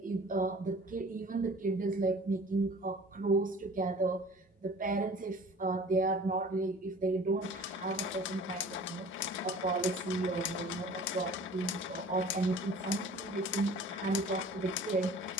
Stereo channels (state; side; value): normal; both; correlation 0.46